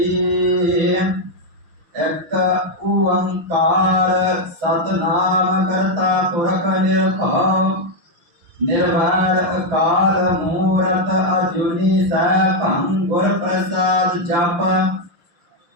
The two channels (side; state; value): left; late; 6.1 ms